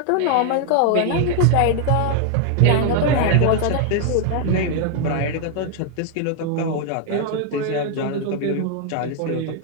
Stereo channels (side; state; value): both; different; correlation 0.00